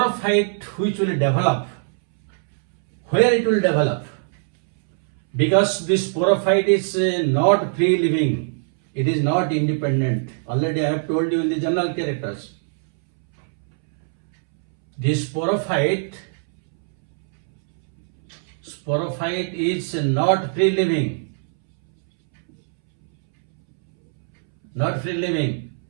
which will develop, where it will develop? Because this sporophyte is not free living, it is not independent. Already I have told you in the general characters. This sporophyte is not free living, not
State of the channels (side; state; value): left; silent; 65 dB below the other